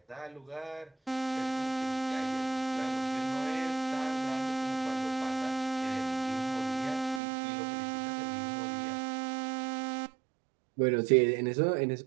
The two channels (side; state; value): left; drops out; at 7.2 s